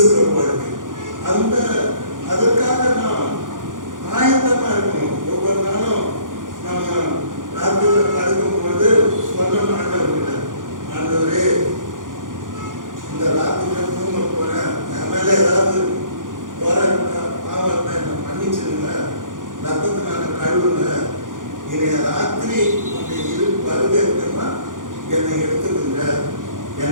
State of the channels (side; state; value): left; late; 0.89 ms